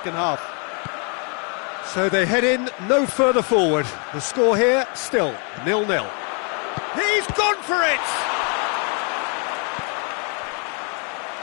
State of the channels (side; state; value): right; quieter; 37.7 dB